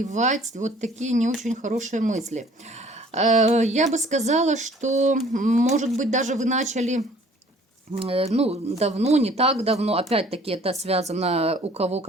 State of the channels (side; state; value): both; normal; correlation 0.54